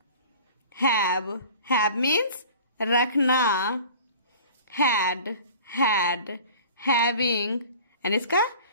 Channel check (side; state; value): both; inverted; correlation -0.44